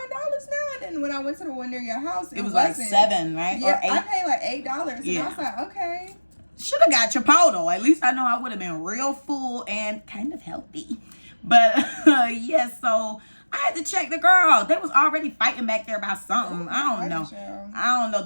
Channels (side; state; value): both; inverted; correlation -1.00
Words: And then when I went to the one near your house, it was like $7, right? Yeah, or $8. I paid like $8. Yeah. And I was like, okay. Should have got Chipotle. At least I know I would have been real full and kind of healthy. But yeah, so I had to check the girl. They was already fighting back there about something. I don't know. I don't know.